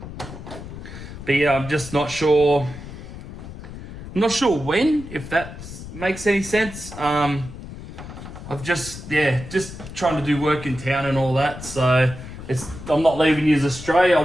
But yeah, I'm just not sure. I'm not sure when, if that makes any sense. I've just trying to do work in town and all that. So I'm not leaving you astray. I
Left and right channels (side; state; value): left; noise; rumble, 12 dB below the sound